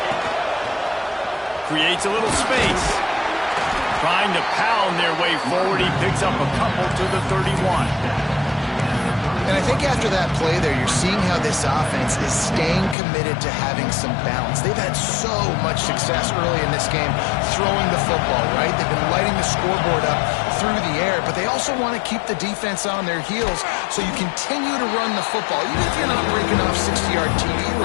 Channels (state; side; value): drops out; right; at 13.0 s